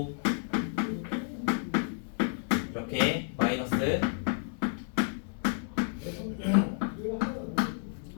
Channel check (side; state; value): right; silent; 57 dB below the other